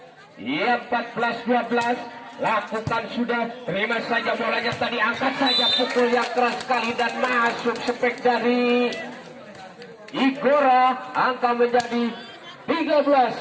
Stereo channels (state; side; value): identical; both; correlation 1.00